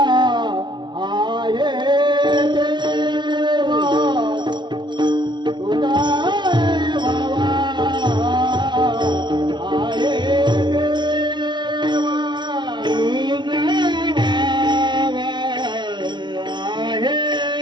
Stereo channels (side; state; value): left; late; 0.22 ms